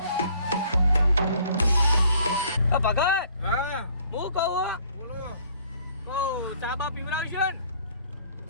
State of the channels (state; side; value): inverted; both; correlation -0.59